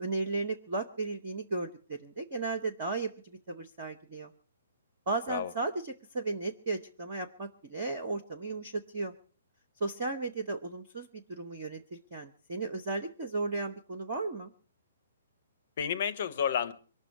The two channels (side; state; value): both; inverted; correlation -0.61